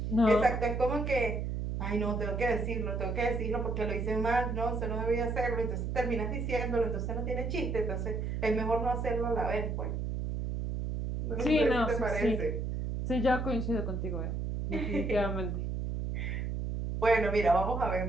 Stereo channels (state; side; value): noise; right; hum, 2 dB below the sound